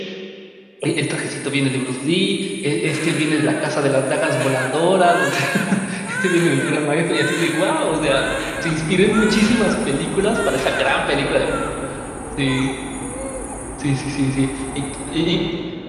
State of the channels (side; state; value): both; identical; correlation 1.00